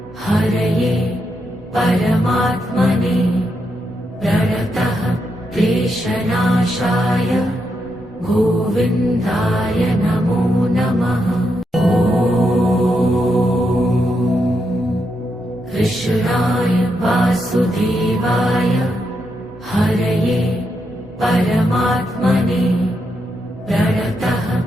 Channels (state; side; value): normal; both; correlation 0.82